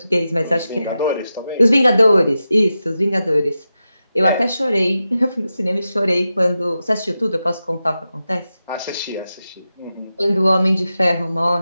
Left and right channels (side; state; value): both; inverted; correlation -0.91